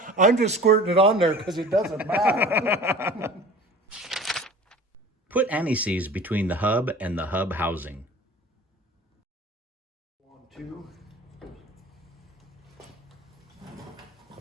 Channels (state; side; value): normal; both; correlation 0.42